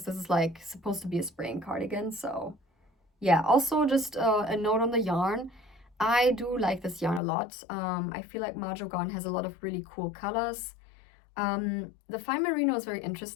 this is like supposed to be a spring cardigan. So yeah, also just a note on the yarn. I do like this yarn a lot. I feel like Mahjong has a lot of really cool colors. The fine merino is very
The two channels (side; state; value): right; drops out; at 7.2 s